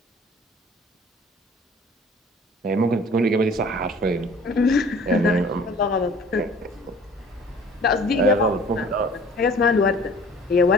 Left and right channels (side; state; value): both; normal; correlation 0.50